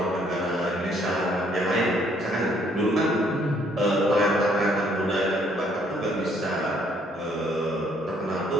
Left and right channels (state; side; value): normal; both; correlation 0.66